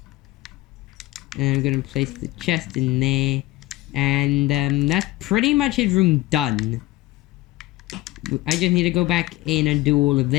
And I'm gonna place the chest in there, and that's pretty much his room done. I just need to go back in and do all of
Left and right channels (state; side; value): quieter; right; 18.0 dB